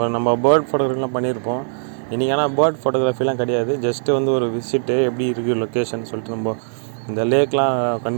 நம்ம பேர்ட் ஃபோட்டோகிராஃபிலாம் பண்ணியிருப்போம். இன்றைக்கி ஆனால் பேர்ட் ஃபோட்டோகிராஃபிலாம் கிடையாது. ஜஸ்ட்டு வந்து ஒரு விசிட்டு எப்படி இருக்குது லொக்கேஷன் சொல்லிட்டு நம்ம இந்த லேக்லாம்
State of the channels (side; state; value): left; silent; digital silence